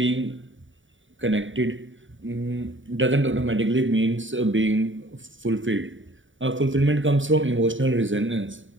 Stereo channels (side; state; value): left; late; 0.56 ms